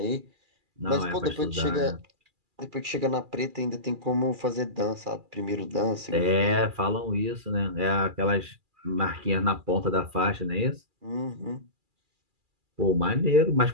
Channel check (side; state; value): left; late; 2.4 ms